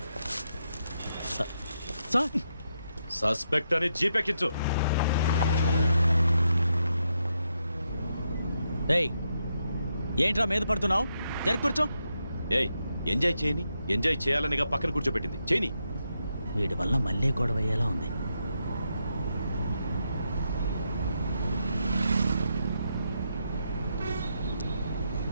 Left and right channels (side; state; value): both; inverted; correlation -0.81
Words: సార్ సస్పెక్ట్ అని జీపెక్కించు. ఏయ్ ఏంట్రా మీద పడుతున్నావు? జరి కూర్చో. ఏయ్ ఎంజాయ్ చేయని, ఎంజాయ్ చేయాలనిగా పక్కన కూర్చోబెట్టింది. చేయని. వీడి వల్ల మళ్ళీ గొడవ అయ్యేలా ఉంది.